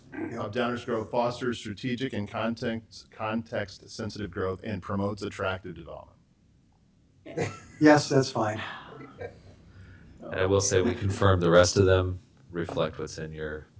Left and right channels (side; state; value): both; identical; correlation 1.00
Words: of Downers Grove, fosters strategic and context sensitive growth, and promotes attractive development. Yes, that's fine. And I will say we confirmed the rest of them reflect what's in your